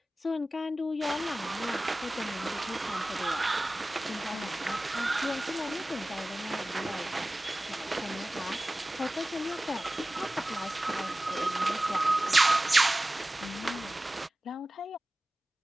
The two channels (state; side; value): normal; both; correlation 0.96